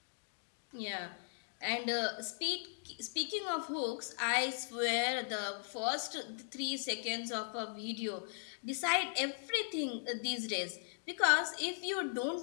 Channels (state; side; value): silent; right; digital silence